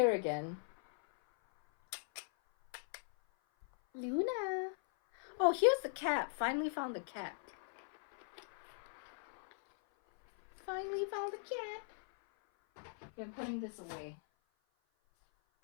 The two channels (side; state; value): right; silent; 51 dB below the other